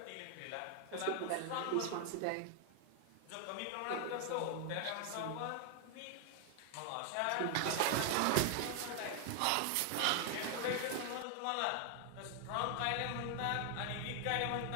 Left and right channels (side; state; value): both; different; correlation 0.00